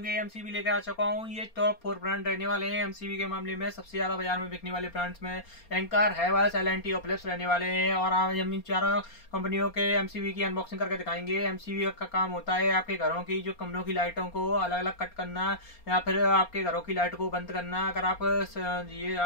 के एमसीबी लेकर आ चुका हूँ। ये टॉप 4 ब्रांड रहने वाले हैं एमसीबी के मामले में। सबसे ज्यादा बाजार में बिकने वाले ब्रांड्स में एंकर, हेवेल्स, एल&टी और फिलिप्स रहने वाले हैं। और आज हम इन चारों कंपनियों के एमसीबी की अनबॉक्सिंग करके दिखाएंगे। एमसीबी का काम होता है आपके घरों की जो कमरों की लाइटों को अलग अलग कट करना या फिर आपके घरों की लाइट को बंद करना। अगर आप ये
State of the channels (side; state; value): right; late; 4.3 ms